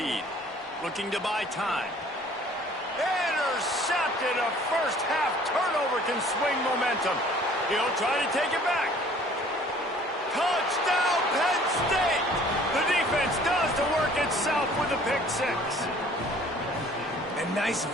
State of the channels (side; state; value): both; normal; correlation 0.53